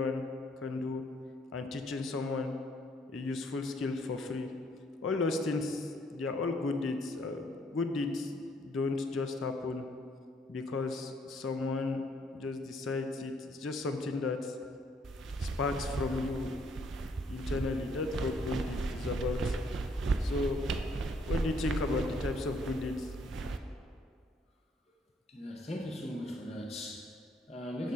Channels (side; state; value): both; normal; correlation 0.67